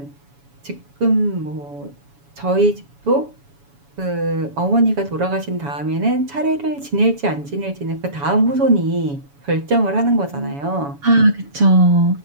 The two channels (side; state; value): left; late; 7.1 ms